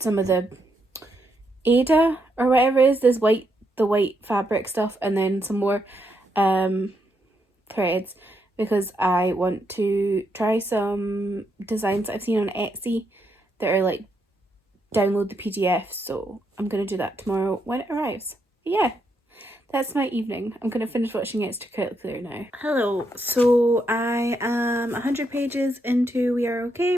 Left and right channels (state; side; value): normal; both; correlation 0.79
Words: of the Aida or whatever it is, the white fabric stuff, and then some more threads because I want to try some designs that I've seen on Etsy that are like download the PDF, so I'm gonna do that tomorrow when it arrives. But yeah, that's my evening. I'm gonna finish watching Extracurricular now. Hello, so I am 100 pages into We Are Okay